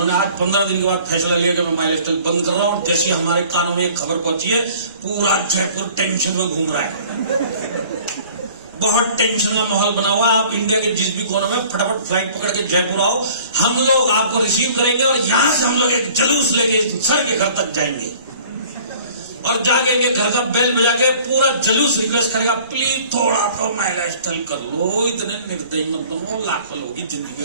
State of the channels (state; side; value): inverted; both; correlation -0.50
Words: आज 15 दिन के बाद फैसला लिया कि मैं माइलस्टाइल बंद कर रहा हूं। जैसे हमारे कानों में एक खबर पहुंची है, पूरा जयपुर टेंशन में घूम रहा है, बहुत टेंशन का माहौल बना हुआ। आप इंडिया के जिस भी कोने में फटाफट फ्लाइट पकड़ के जयपुर आओ, हम लोग आपको रिसीव करेंगे और यहां से हम लोग एक जुलूस लेके सर के घर तक जाएंगे और जाके इनके घर का बेल बजा के पूरा जुलूस रिक्वेस्ट करेगा, प्लीज थोड़ा तो माइलस्टाइल कर लो, इतने निर्दयी मत बनो, लाखों लोगों की